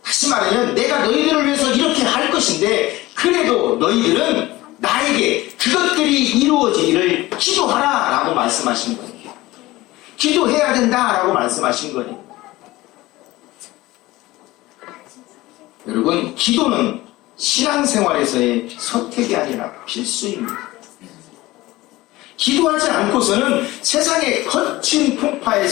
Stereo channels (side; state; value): right; quieter; 18.7 dB